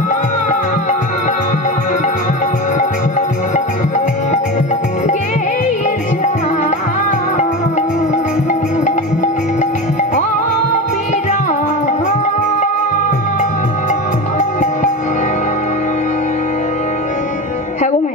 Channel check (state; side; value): normal; both; correlation 0.24